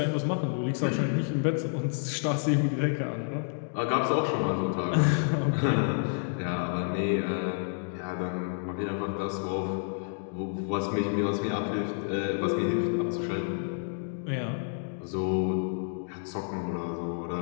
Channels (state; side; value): silent; right; digital silence